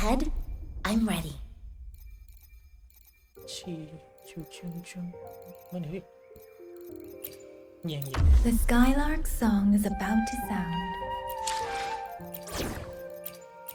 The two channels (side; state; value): both; identical; correlation 1.00